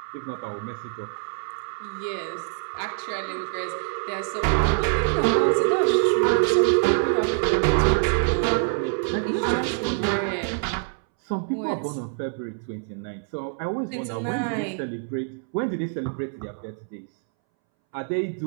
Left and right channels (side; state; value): left; silent; 62 dB below the other